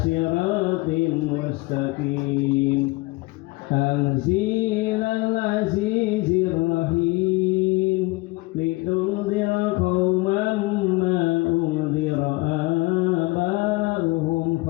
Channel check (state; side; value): quieter; right; 23.4 dB